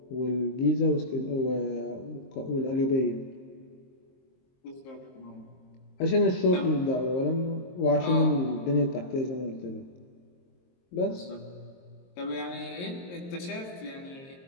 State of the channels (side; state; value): right; late; 23 ms